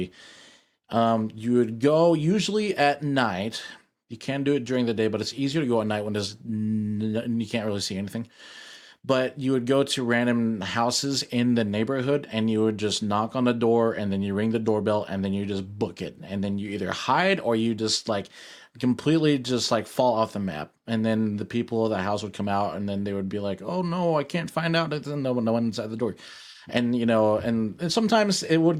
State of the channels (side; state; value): both; identical; correlation 1.00